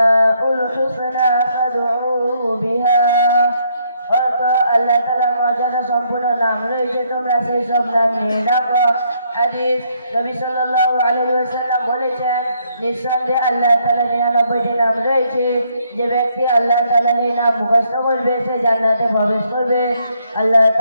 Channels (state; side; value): inverted; both; correlation -0.72